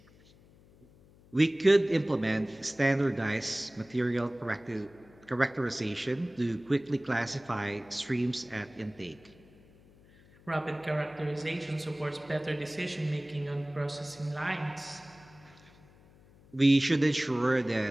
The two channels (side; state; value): left; noise; hum, 26 dB below the sound